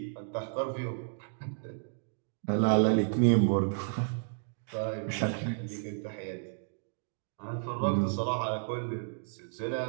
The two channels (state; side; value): silent; left; digital silence